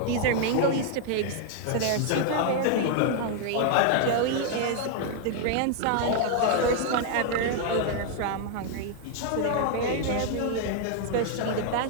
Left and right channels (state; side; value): different; both; correlation 0.00